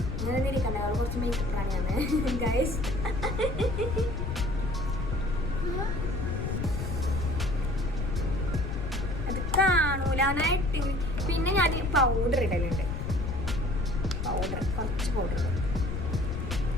അങ്ങനെ ഇരിക്കണ്ട, അവൾ കുറച്ച് മേക്കപ്പ് പ്രാണിയാണ് ഗൈസ്. അത് കാണൂലാനായിട്ട്. പിന്നെ ഞാൻ പൗഡർ ഇടലുണ്ട്, കുറച്ച് പൗഡർ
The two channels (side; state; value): left; noise; rumble, 3 dB below the sound